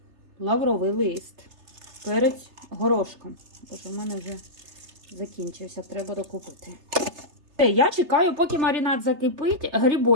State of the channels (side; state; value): left; late; 3.3 ms